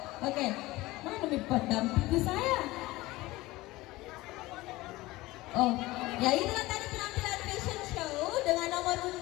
Oke. Mana nih pendamping saya? Oh, ya itulah tadi penampilan fashion show dengan nomor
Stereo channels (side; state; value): right; quieter; 19.4 dB